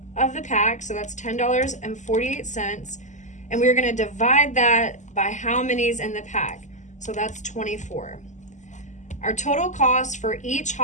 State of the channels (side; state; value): right; late; 0.35 ms